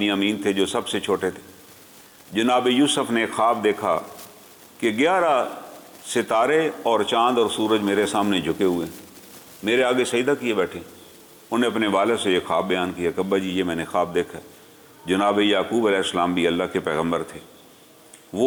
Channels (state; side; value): identical; both; correlation 1.00